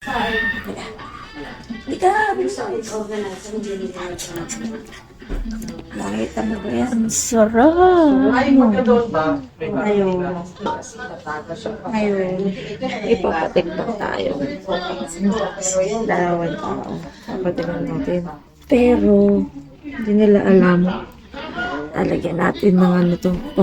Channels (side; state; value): both; identical; correlation 1.00